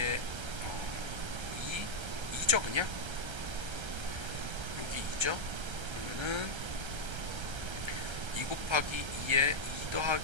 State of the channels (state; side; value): late; left; 1.3 ms